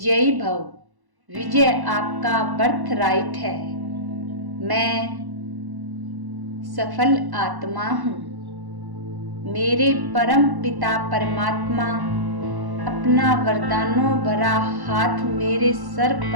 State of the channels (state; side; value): late; left; 1.1 ms